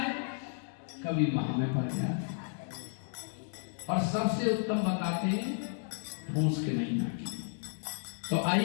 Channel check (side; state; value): right; silent; digital silence